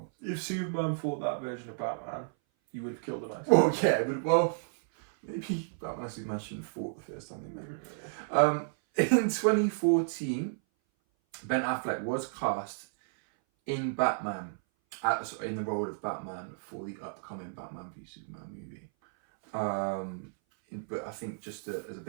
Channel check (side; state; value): left; silent; 56 dB below the other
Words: If Superman fought that version of Batman, he would have killed him. Well, yeah, maybe Batman and Superman shouldn't have fought the first time they met. In 2014, Ben Affleck was cast in Batman, in the role of Batman for the upcoming Batman v Superman movie. But I think just as a